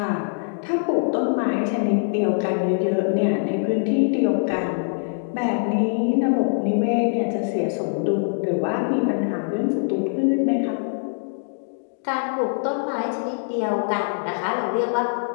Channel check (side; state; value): right; silent; digital silence